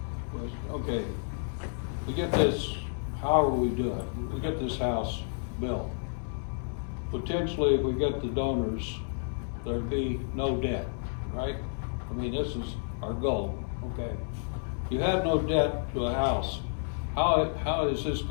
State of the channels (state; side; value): silent; right; digital silence